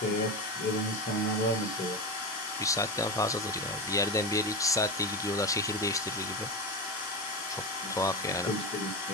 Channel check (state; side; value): normal; both; correlation 0.19